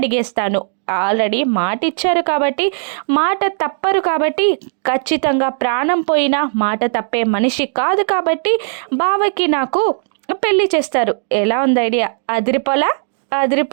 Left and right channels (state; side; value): silent; left; digital silence